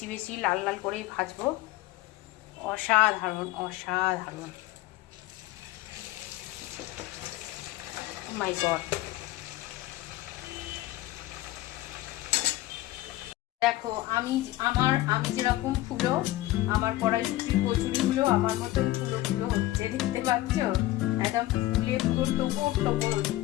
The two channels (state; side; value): quieter; right; 16.9 dB